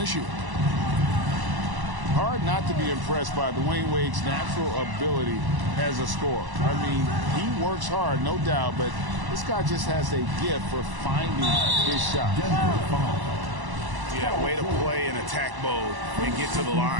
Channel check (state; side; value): late; left; 1.1 ms